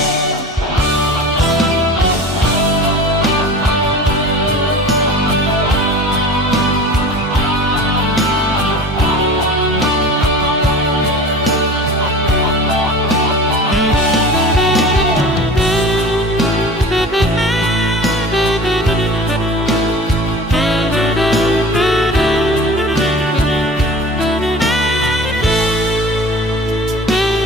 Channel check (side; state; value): both; normal; correlation 0.38